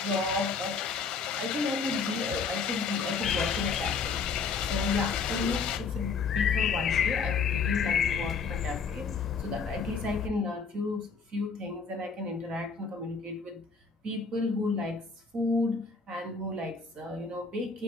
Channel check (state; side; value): quieter; right; 5.1 dB